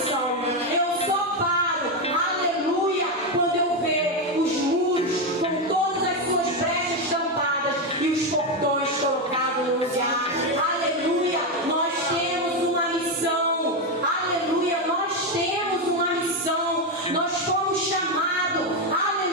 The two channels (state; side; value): normal; both; correlation 0.08